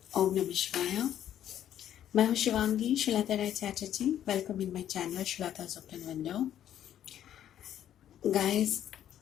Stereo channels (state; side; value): quieter; right; 10.8 dB